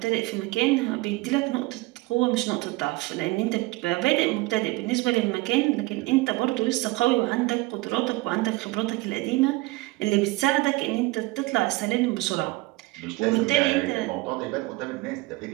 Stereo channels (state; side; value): quieter; left; 21.3 dB